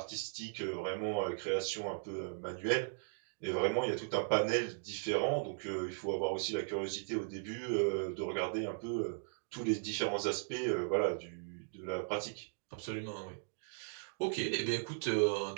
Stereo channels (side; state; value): left; silent; digital silence